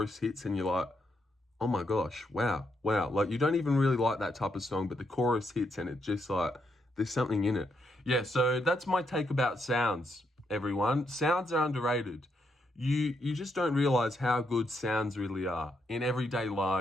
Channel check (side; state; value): both; normal; correlation 0.79